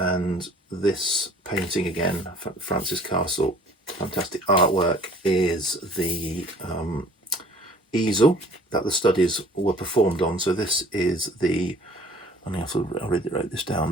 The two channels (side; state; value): both; normal; correlation 0.52